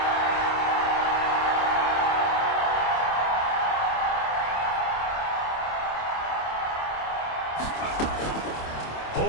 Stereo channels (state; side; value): late; right; 27 ms